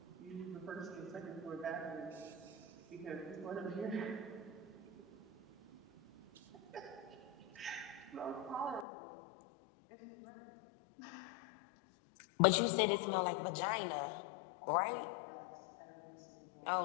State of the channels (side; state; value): right; drops out; at 8.8 s